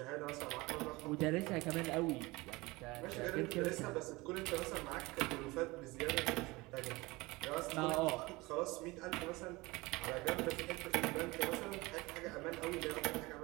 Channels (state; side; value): quieter; left; 22.4 dB